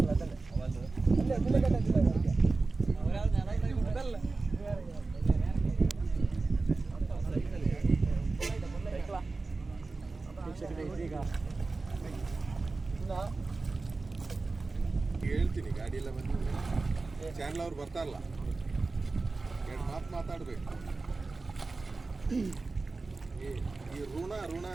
ಹೇಳ್ತೀನಿ ಗಾಡಿ ಎಲ್ಲ ಬಂದಿದೆ. ಚಾನಲ್ ಅವ್ರು ಬರ್ತಾರಲ್ಲ, ಎರಡು ಮಾತು ಮಾತಾಡ್ಬೇಕು. ಈ ಋಣ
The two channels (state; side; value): quieter; left; 3.7 dB